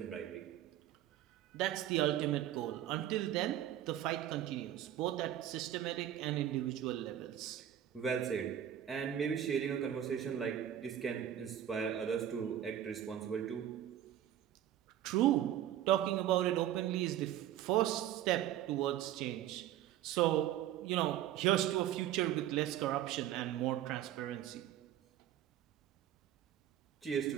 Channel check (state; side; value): quieter; left; 11.5 dB